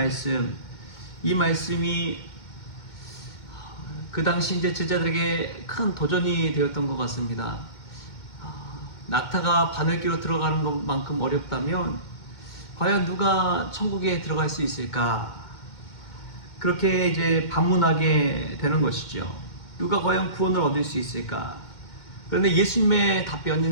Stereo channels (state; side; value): late; right; 2.2 ms